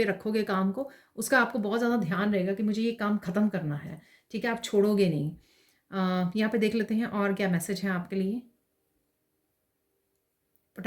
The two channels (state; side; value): identical; both; correlation 1.00